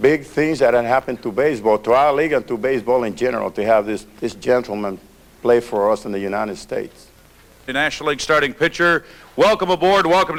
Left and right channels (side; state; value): both; identical; correlation 1.00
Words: big things that had happened to baseball, to our league and to baseball in general, to have this gentleman play for us in the United States. The National League starting pitcher, welcome aboard, welcome